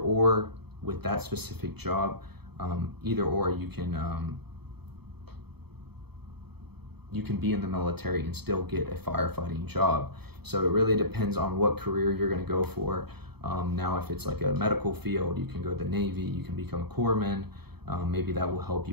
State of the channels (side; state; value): left; late; 0.97 ms